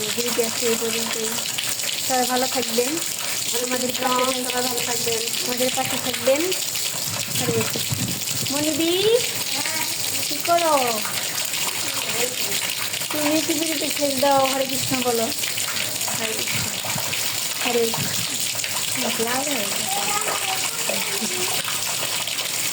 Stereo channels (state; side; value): identical; both; correlation 1.00